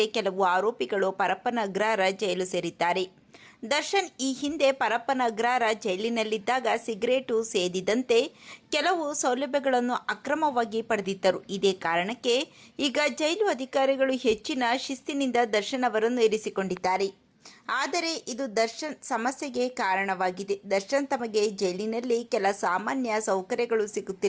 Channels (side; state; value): both; identical; correlation 1.00